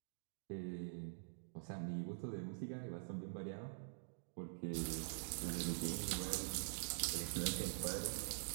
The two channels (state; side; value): silent; left; digital silence